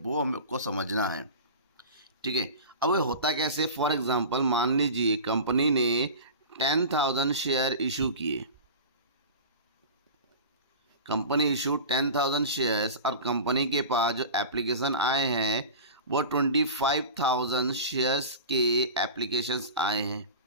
वो हमको समझना है। ठीक है, अब ये होता कैसे? फॉर एग्जांपल मान लीजिए कंपनी ने 10,000 शेयर इशू किए। कंपनी इशू 10,000 शेयर्स और कंपनी के पास जो एप्लीकेशन आए हैं वो 25,000 शेयर्स के एप्लीकेशंस आए हैं।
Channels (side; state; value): both; inverted; correlation -0.32